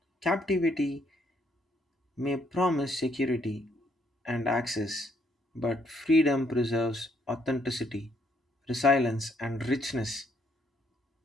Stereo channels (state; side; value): normal; both; correlation 0.70